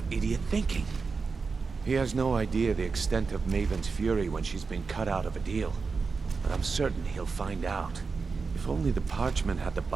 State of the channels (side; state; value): left; quieter; 4.7 dB